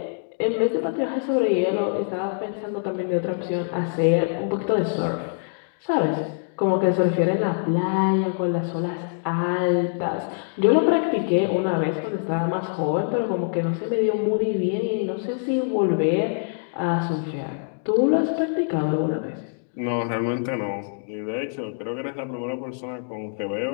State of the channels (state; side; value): silent; right; digital silence